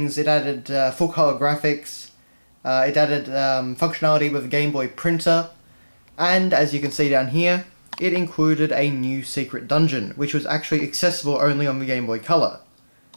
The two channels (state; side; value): inverted; both; correlation -1.00